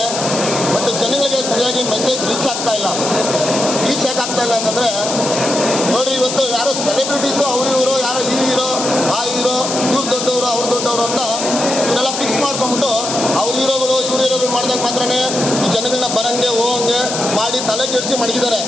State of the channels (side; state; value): left; noise; hiss, 4 dB below the sound